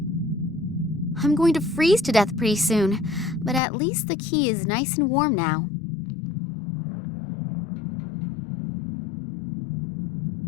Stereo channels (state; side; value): drops out; right; at 3.6 s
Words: I'm going to freeze to death pretty soon, but at least the key is nice and warm now.